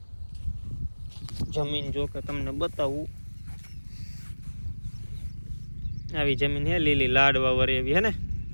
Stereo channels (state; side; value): inverted; both; correlation -1.00